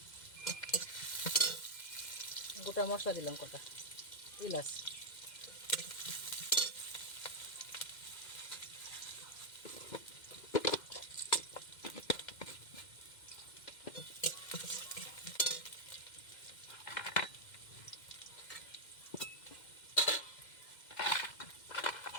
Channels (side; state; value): right; late; 2.1 ms